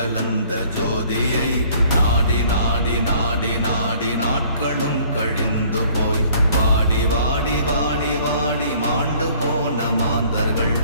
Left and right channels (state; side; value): inverted; both; correlation -0.57